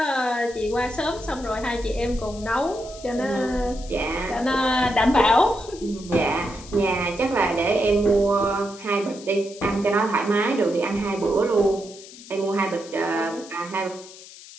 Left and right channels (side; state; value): left; noise; hiss, 18 dB below the sound